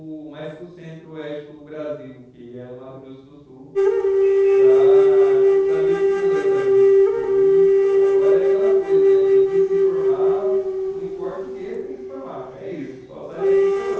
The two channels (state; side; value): identical; both; correlation 1.00